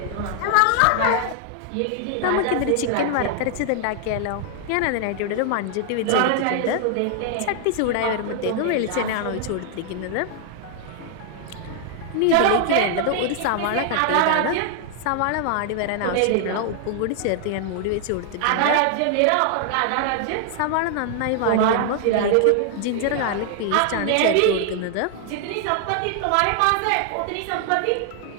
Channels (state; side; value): different; both; correlation 0.00